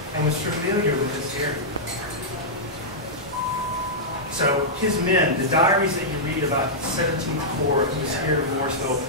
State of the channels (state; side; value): normal; both; correlation -0.11